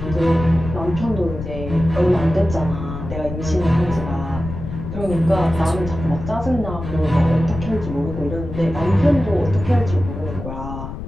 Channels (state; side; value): noise; left; rumble, 8 dB below the sound